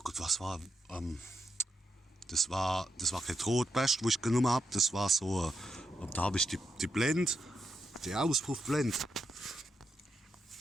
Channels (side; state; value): both; normal; correlation 0.83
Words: Gott, was war? Das war kein Rotbest, wo ich genommen habe. Das war so, da habe ich die Blende, die Auspuffblende.